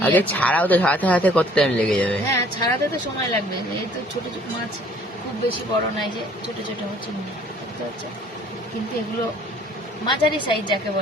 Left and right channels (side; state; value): both; normal; correlation 0.57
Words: আগে ছাড়াও তো, ছাড়াতে ছাড়াতে কত টাইম লেগে যাবে? হ্যাঁ ছাড়াতে তো সময় লাগবে। এই তো ছোট ছোট মাছ, খুব বেশি বড় নাই, যে ছোট ছোট চিংড়ি দেখতে হচ্ছে। কিন্তু এগুলো মাঝারি সাইজ যাকে